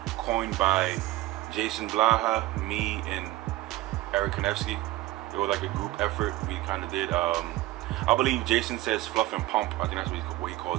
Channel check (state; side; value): quieter; left; 17.2 dB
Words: coined by Jason Blaha, me, and Eric Konevsky. It was like a group effort we kind of did. I believe Jason says fluff and pump. I think that's what he